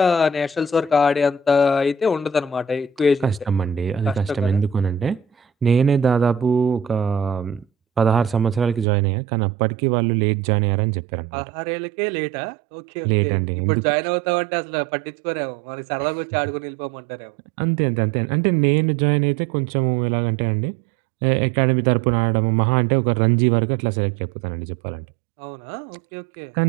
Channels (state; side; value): drops out; left; at 8.8 s